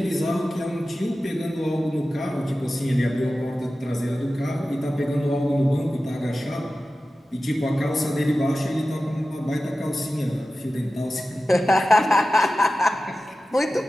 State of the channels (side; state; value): both; normal; correlation 0.95